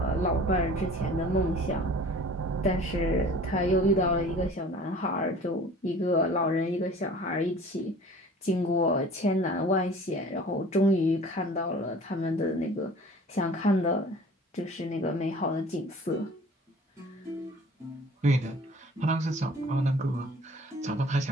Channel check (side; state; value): both; normal; correlation 0.46